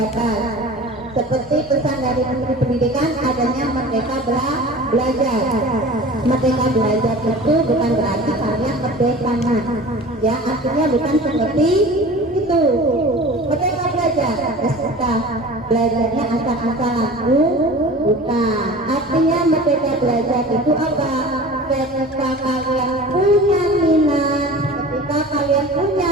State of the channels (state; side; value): normal; both; correlation 0.39